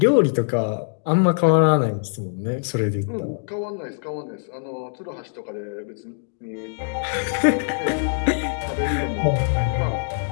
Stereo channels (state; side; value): silent; right; digital silence